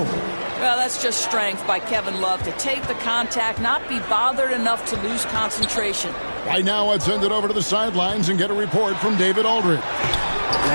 Well, that's just strength by Kevin Love to take the contact, not be bothered enough to lose concentration. Right now, I'd send it over to the sidelines and get a report from David Aldridge.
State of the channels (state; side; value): inverted; both; correlation -1.00